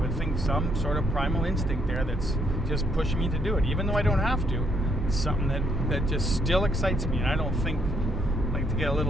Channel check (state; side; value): normal; both; correlation 0.72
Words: think, some sort of primal instinct there that's just pushing me to do it, even though I don't have to. It's something that just still excites me. And I don't think, like, to get a